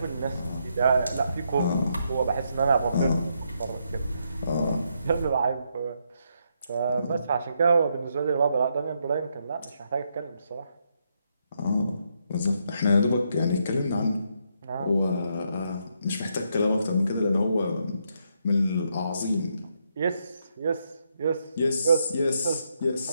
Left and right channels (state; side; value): inverted; both; correlation -0.78